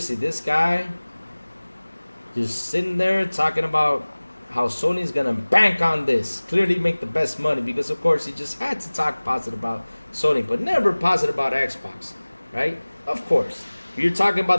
this guy just sitting there talking about how Sony's gonna bank on this, clearly make the best money, because of course he just had to talk positive about Sony, but never positive about Xbox, right? Of course. You're talking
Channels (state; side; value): inverted; both; correlation -1.00